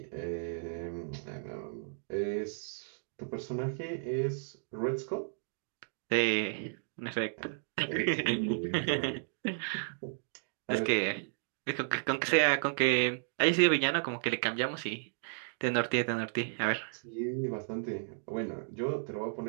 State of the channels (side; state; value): left; silent; digital silence